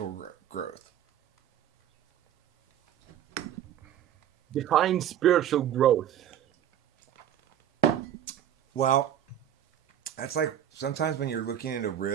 growth? Define spiritual growth. Well, that's like sometimes when you're looking at a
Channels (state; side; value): quieter; left; 10.6 dB